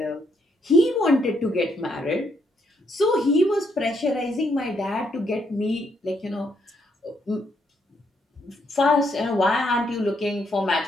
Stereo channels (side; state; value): both; normal; correlation 0.74